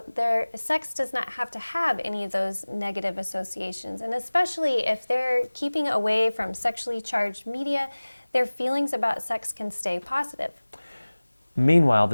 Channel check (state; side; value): inverted; both; correlation -1.00